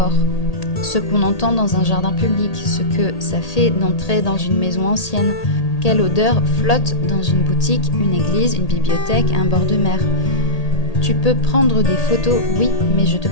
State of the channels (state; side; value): late; right; 1.8 ms